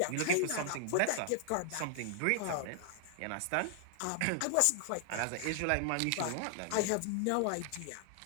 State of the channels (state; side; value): different; both; correlation 0.00